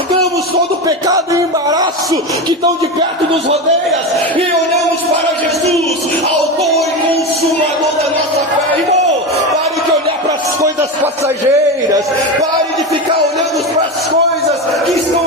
todo o pecado e embaraço que tão de perto nos rodeia, e olhamos para Jesus, autor e consumador da nossa fé. Irmão, pare de olhar para as coisas passageiras, pare de ficar olhando para as coisas que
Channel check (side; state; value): both; normal; correlation 0.19